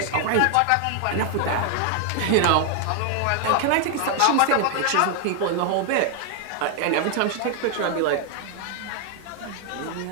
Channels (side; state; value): both; different; correlation 0.00